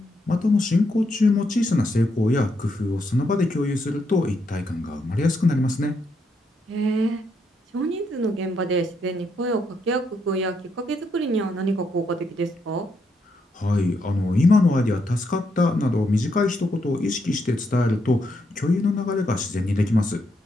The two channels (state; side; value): normal; both; correlation 0.78